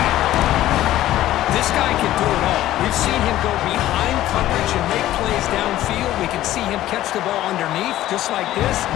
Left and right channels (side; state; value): right; quieter; 14.2 dB